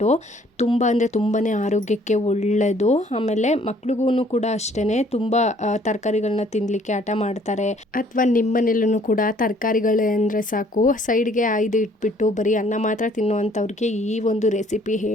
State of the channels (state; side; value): normal; both; correlation 0.60